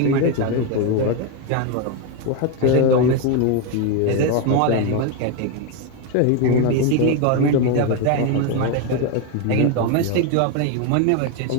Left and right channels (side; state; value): both; different; correlation 0.02